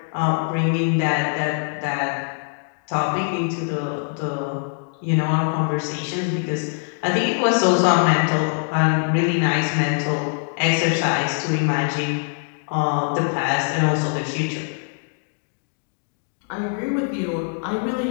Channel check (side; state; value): right; silent; 62 dB below the other